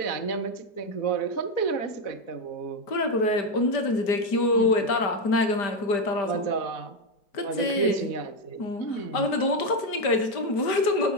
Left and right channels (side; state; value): right; late; 5.0 ms